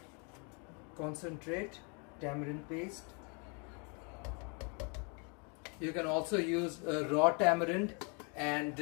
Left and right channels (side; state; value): right; quieter; 35.1 dB